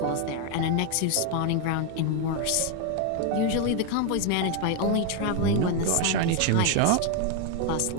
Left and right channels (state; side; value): different; both; correlation 0.01